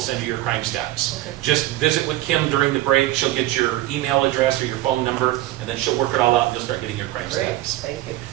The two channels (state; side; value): quieter; left; 15.9 dB